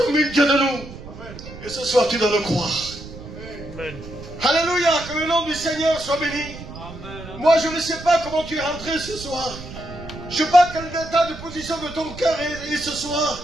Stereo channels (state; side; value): noise; right; rumble, 13 dB below the sound